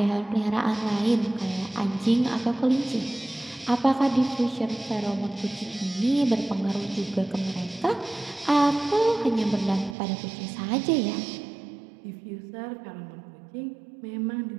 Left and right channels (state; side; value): drops out; left; at 10.0 s